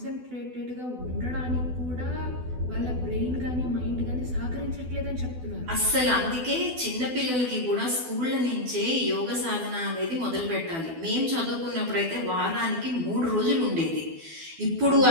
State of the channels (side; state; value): left; late; 12 ms